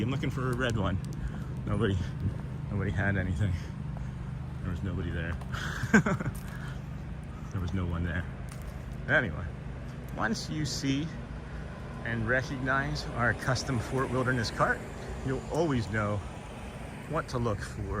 I'm looking for a red one. Nobody had anything. There was nobody there. There was no one there. Anyway, once you see and recognize our custom Fort Wilderness cart, you'll always know what to look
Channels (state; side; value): identical; both; correlation 1.00